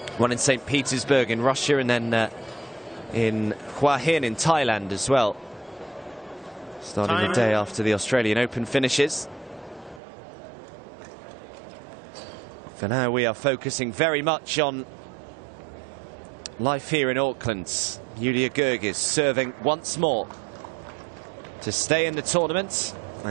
One in St. Petersburg in Russia, and then in Hua Hin in Thailand as well, starting the day after the Australian Open finishes. For now, we are focusing very much on life here in Auckland. Julia Goerges serving once more to stay in the tournament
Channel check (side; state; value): left; drops out; at 10.0 s